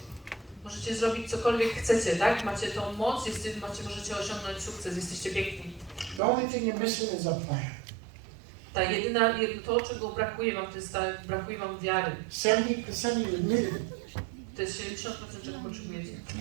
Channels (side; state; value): left; drops out; at 6.2 s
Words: Możecie zrobić cokolwiek chcecie, tak? Macie tą moc, możecie osiągnąć sukces, jesteście piękni. The only thing you're missing is a plan. To, czego brakuje wam, to jest brakuje wam wiary. 70% you admitted it. To jest 70%, czego potrzebujecie.